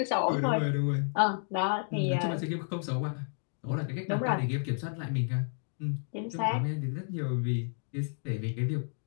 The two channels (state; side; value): silent; right; 57 dB below the other